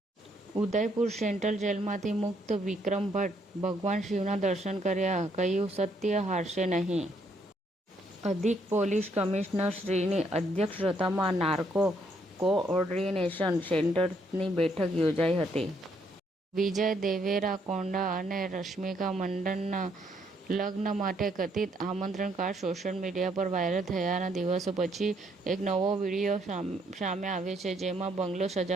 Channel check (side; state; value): both; normal; correlation 0.71